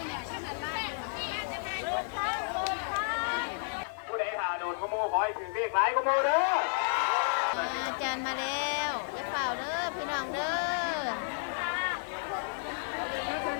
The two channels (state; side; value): silent; right; digital silence